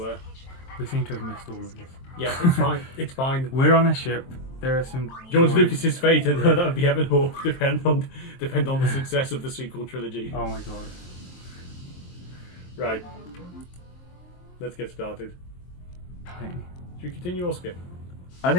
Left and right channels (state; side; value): late; right; 23 ms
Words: We seem to have missed all of this. Yeah, it's fine. It's fine. We're on a ship. There are some... George Lucas's fate and that would be heaven or depend on the success of the sequel trilogy. Oh my god. Right. Let's get started. Should we continue or skip? I